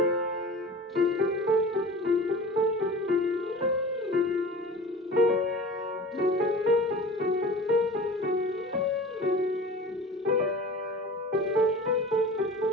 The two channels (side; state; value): both; normal; correlation 0.38